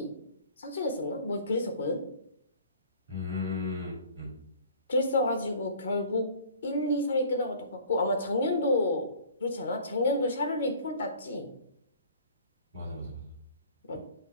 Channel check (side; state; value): both; inverted; correlation -0.49